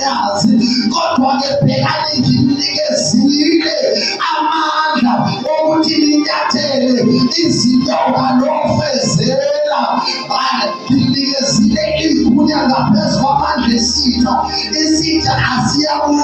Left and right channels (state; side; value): identical; both; correlation 1.00